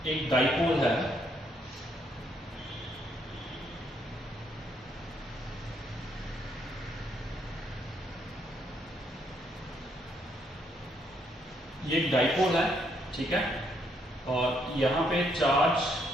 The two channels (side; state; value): both; normal; correlation 0.72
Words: एक डाइपोल है, ये एक डाइपोल है, ठीक है, और यहाँ पे